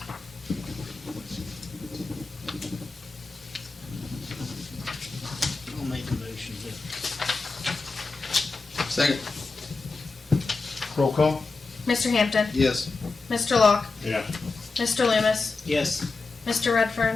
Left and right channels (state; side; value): quieter; right; 3.9 dB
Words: I'll make a motion to. Second. Roll call. Mr. Hampton. Yes. Mr. Locke. yes. Mr. Loomis. Yes. Mr.